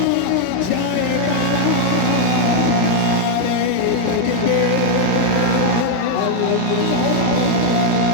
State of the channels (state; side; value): different; both; correlation 0.00